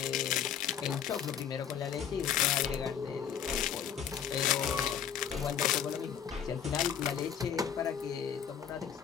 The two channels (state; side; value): quieter; right; 8.5 dB